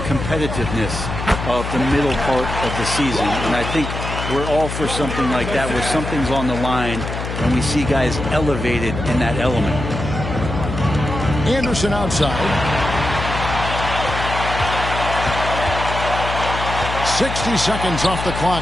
competitiveness of the middle part of the season. And I think we're all for something like that, where something's on the line and we see guys elevated in that element. Anderson outside. 60 seconds off the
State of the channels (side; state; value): left; noise; hum, 6 dB below the sound